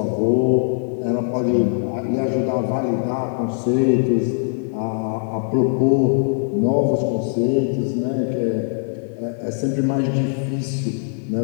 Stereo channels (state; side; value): silent; right; digital silence